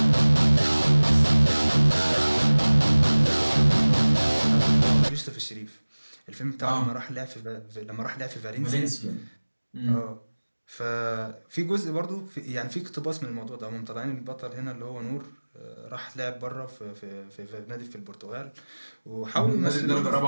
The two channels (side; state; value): both; inverted; correlation -1.00